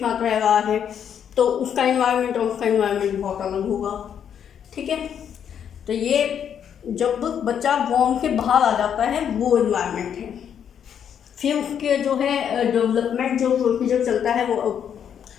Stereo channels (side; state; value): right; quieter; 8.5 dB